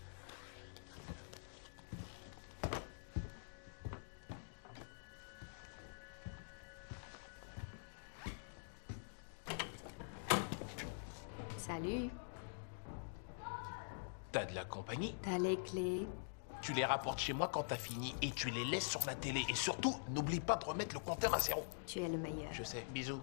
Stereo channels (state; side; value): silent; right; digital silence